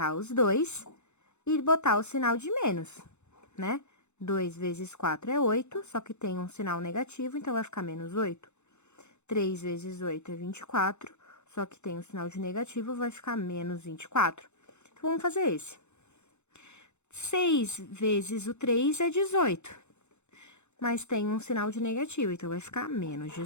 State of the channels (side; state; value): right; late; 0.83 ms